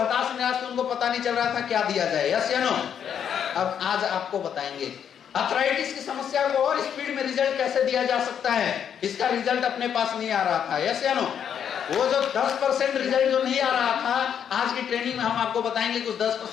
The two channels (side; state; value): right; quieter; 8.5 dB